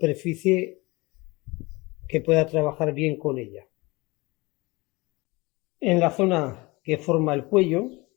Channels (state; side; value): quieter; right; 23.8 dB